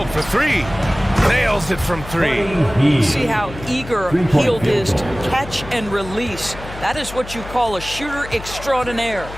for 3. Nails it from 3. See how eager Hield is to catch and release. That is what you call a shooter extraordinaire.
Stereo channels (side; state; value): left; noise; hum, 13 dB below the sound